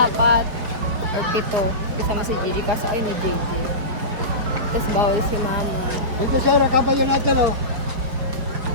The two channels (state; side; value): late; left; 5.0 ms